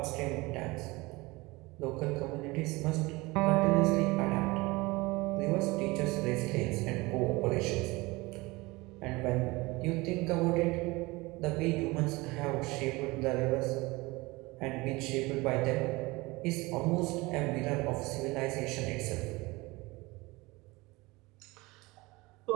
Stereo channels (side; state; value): left; quieter; 22.8 dB